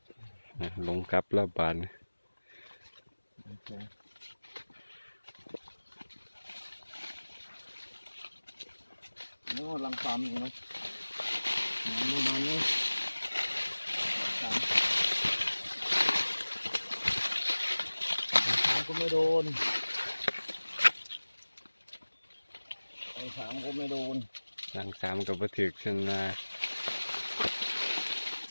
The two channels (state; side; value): inverted; both; correlation -1.00